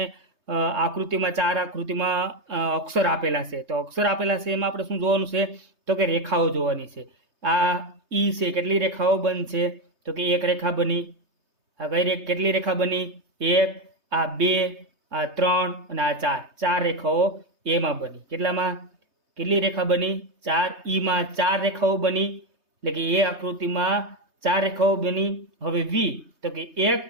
આકૃતિમાં ચાર આકૃતિમાં અક્ષર આપેલા છે. તો અક્ષર આપેલા છે એમાં આપણે શું જોવાનું છે તો કે રેખાઓ જોવાની છે. આ ઈ છે, કેટલી રેખાઓ બંધ છે તો કે એક રેખા બની. આ કેટલી રેખા બની? એક, આ બે, આ ત્રણ અને આ ચાર. ચાર રેખાઓ એમાં બની. કેટલી રેખા બની? ચાર. ઈમાં ચાર રેખાઓ બની, એટલે કે એ આકૃતિમાં ચાર રેખાઓ બની. હવે વી તો કે એક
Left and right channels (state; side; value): late; left; 3.2 ms